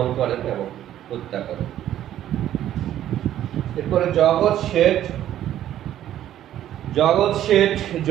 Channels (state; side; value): quieter; left; 11.9 dB